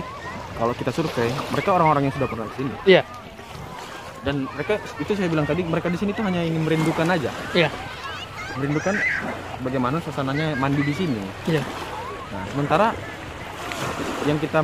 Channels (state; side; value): identical; both; correlation 1.00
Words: kalau kita survei, mereka orang-orang yang sudah pernah ke sini. Iya. Dan mereka itu saya bilang tadi, mereka di sini tuh hanya ingin merindukan aja. Iya. Merindukan bagaimana suasananya mandi di sini. Iya. Nah, sementara yang